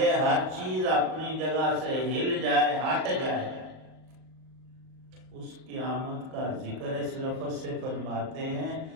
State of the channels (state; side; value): late; left; 38 ms